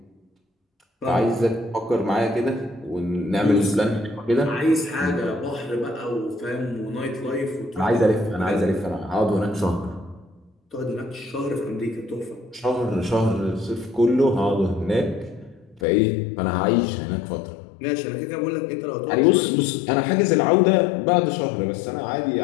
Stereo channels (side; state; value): right; drops out; at 15.8 s